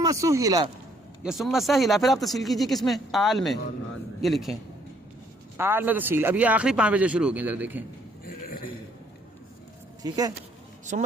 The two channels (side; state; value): both; normal; correlation 0.66